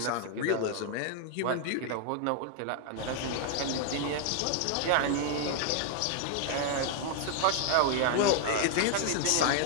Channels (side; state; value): both; different; correlation 0.00